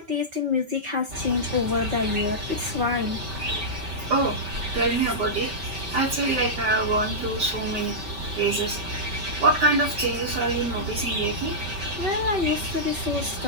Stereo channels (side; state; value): left; late; 5.2 ms